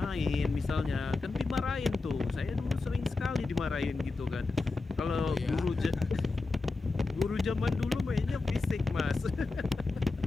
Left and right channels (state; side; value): quieter; right; 3.7 dB